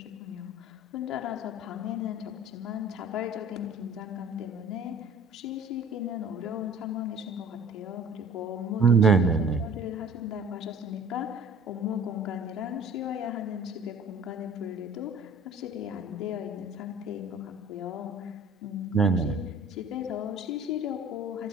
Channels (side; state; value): both; normal; correlation 0.48